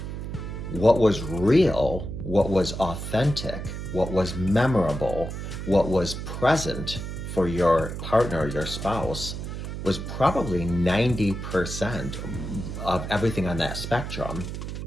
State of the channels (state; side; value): noise; right; hum, 6 dB below the sound